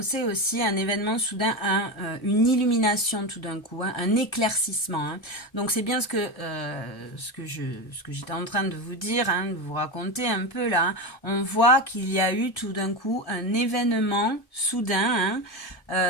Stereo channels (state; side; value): late; right; 1.3 ms